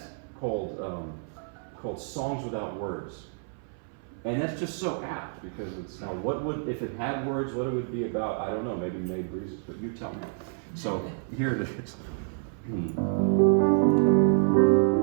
called Songs Without Words. And that's just so apt because it's, now what would, if it had words, what it would be about, I don't know, maybe May Breezes, but you tell me. So here it is.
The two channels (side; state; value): left; silent; 57 dB below the other